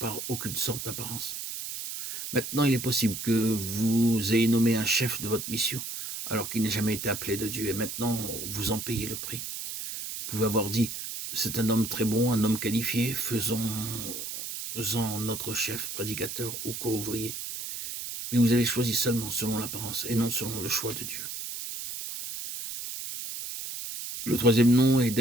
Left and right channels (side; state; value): right; noise; hiss, 7 dB below the sound